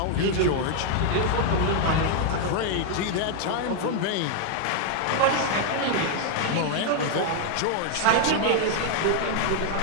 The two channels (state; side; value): different; both; correlation 0.00